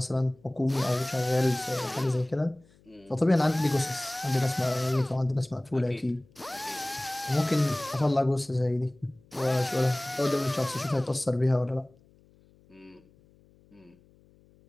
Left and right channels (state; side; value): noise; left; hum, 30 dB below the sound